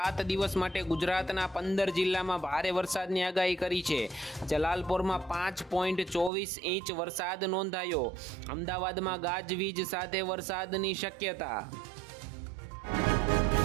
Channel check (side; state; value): left; drops out; at 6.3 s